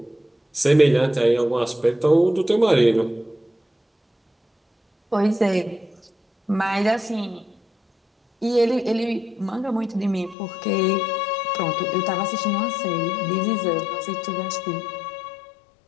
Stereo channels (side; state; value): right; drops out; at 10.4 s